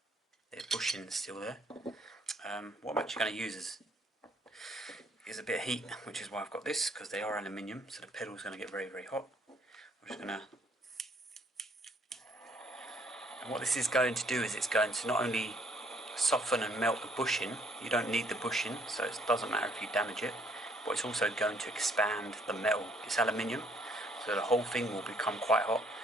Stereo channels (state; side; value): normal; both; correlation 0.65